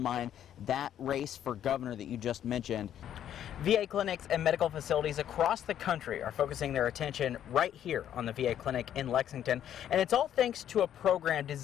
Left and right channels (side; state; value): right; quieter; 10.4 dB